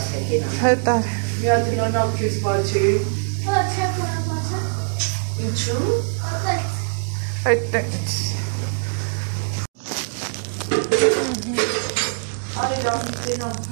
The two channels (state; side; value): silent; left; digital silence